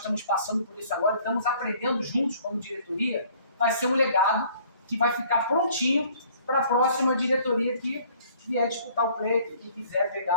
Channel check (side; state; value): both; inverted; correlation -0.56